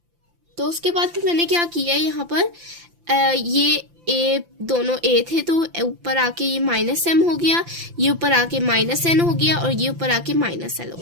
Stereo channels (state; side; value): late; left; 5.9 ms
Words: तो उसके बाद फिर मैंने क्या किया, यहाँ पर ये ए दोनों ए थे, तो ऊपर आके ये -m हो गया, ये ऊपर आके -n हो गया, और ये ऊपर आके -l हो